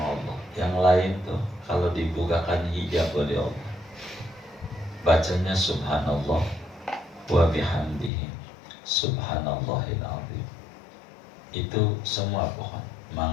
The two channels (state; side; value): drops out; right; at 8.1 s